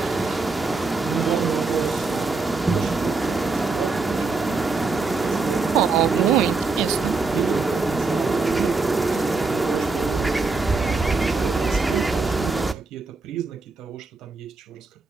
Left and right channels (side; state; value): left; quieter; 4.0 dB